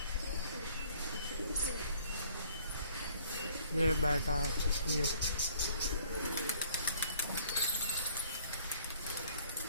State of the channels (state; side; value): inverted; both; correlation -0.57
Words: ये बैठा है ये,